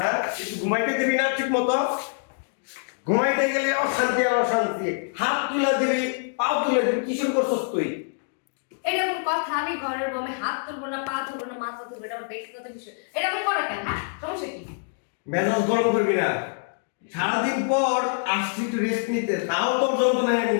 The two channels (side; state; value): right; silent; digital silence